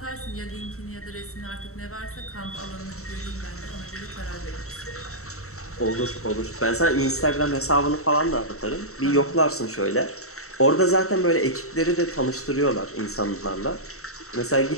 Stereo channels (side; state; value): right; late; 0.64 ms